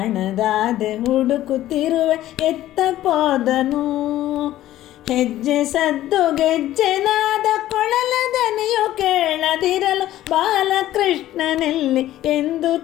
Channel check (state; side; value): quieter; right; 14.0 dB